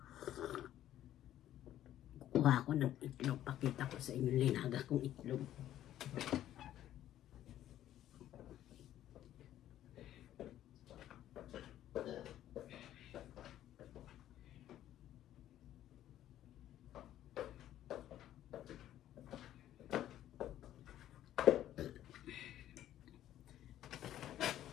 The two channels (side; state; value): right; quieter; 12.4 dB